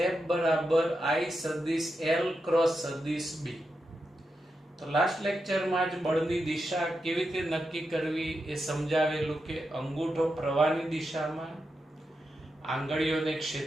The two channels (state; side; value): normal; both; correlation 0.87